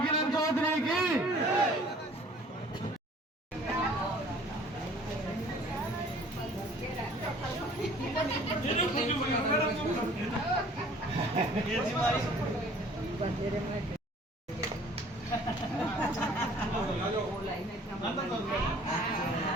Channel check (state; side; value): normal; both; correlation 0.52